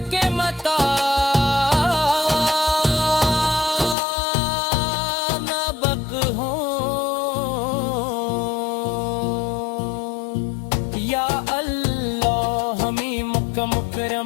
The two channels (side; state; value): right; drops out; at 4.0 s